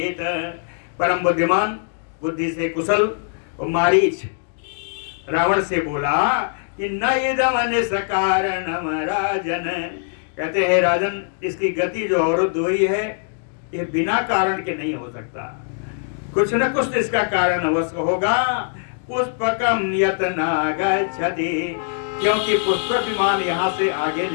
परम बुद्धिमान, बुद्धि से कुशल और मारीच रावण से बोला कि न इदम निष्कारणम राजन, कहते हैं राजन इसकी गति जो अवरुद्ध हुई है ये बिना कारण के नहीं हो सकता, कुछ न कुछ इसका कारण अवश्य होगा। पुष्पकम यतना गच्छति, क्योंकि पुष्पक विमान यहाँ से आगे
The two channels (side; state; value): right; silent; digital silence